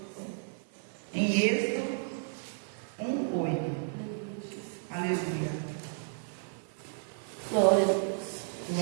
em Êxodo 1:8. Aleluia. Glória a Deus.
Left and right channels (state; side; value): silent; left; 56 dB below the other